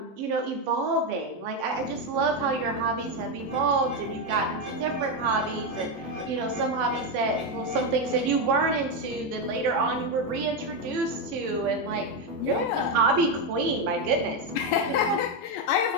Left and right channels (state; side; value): normal; both; correlation 0.08